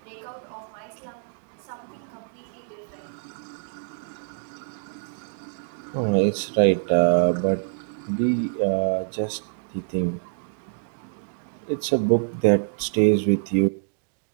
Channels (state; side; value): silent; left; digital silence